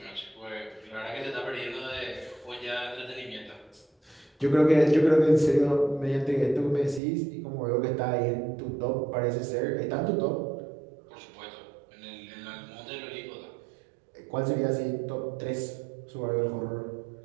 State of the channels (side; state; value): left; drops out; at 7.0 s